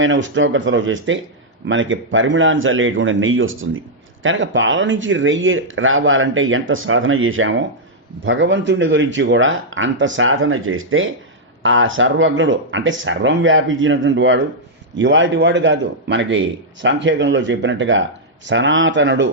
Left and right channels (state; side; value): normal; both; correlation -0.06